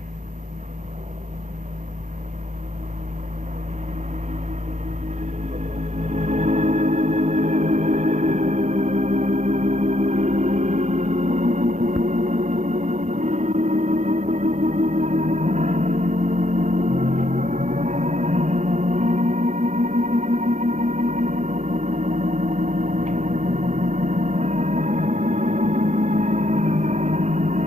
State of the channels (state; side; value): normal; both; correlation 0.72